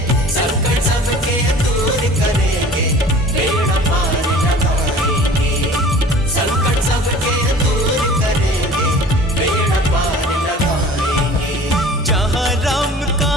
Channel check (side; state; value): both; normal; correlation 0.45